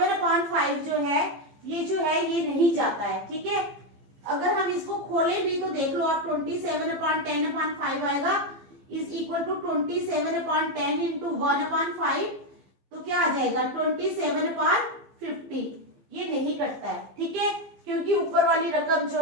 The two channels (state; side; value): late; left; 15 ms